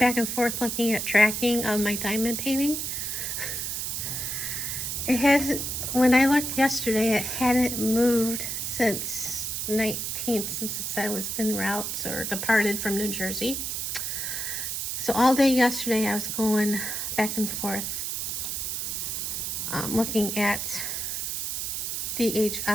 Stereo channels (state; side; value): noise; right; hiss, 2 dB below the sound